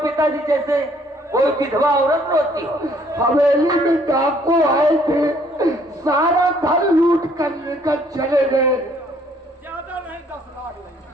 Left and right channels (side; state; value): both; normal; correlation 0.63